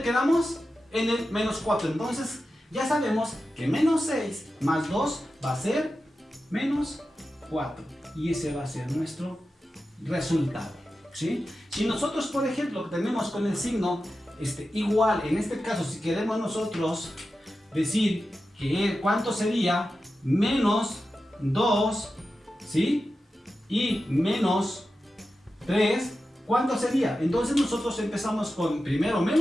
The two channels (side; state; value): both; normal; correlation 0.92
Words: quedamos? En el menos 4. Entonces ya sabemos que menos 6 más 2 va a ser menos 4. Y ese va a ser nuestro resultado, ¿sí? Si nosotros, por ejemplo, tenemos con el signo igual, en este caso, si queremos nosotros decir que cuánto sería menos 2, ¿sí? Y menos 3, ¿cuánto sería? Entonces nosotros empezamos con primero